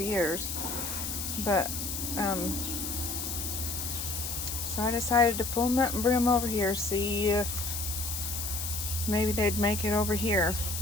years, but so I decided to pull them up and bring them over here, see if maybe they'd make it over here.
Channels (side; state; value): left; noise; hiss, 4 dB below the sound